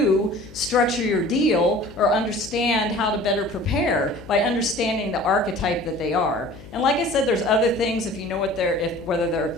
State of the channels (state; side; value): noise; left; hum, 18 dB below the sound